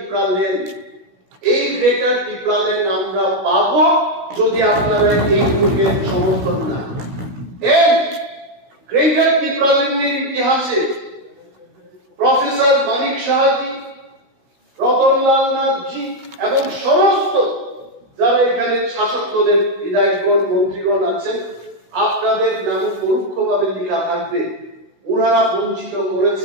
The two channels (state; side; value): late; left; 16 ms